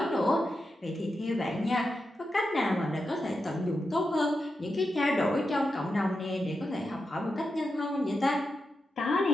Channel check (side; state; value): both; normal; correlation 0.89